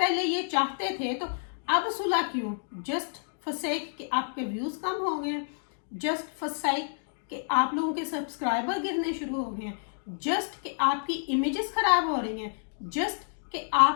ये चाहते थे, तो अब सुलह क्यों? जस्ट फॉर सेक कि आपके व्यूज कम हो गए, जस्ट फॉर सेक कि आप लोगों के सब्सक्राइबर गिरने शुरू हो गए हैं, जस्ट कि आपकी इमेजेस खराब हो रही हैं, जस्ट कि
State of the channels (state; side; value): silent; right; digital silence